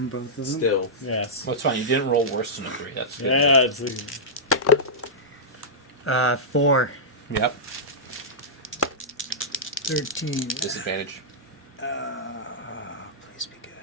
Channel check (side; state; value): both; normal; correlation -0.12